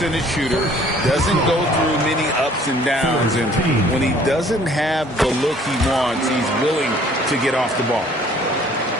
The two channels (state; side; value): normal; both; correlation 0.56